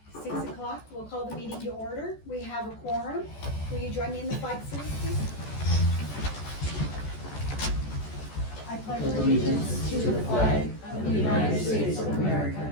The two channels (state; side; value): late; right; 14 ms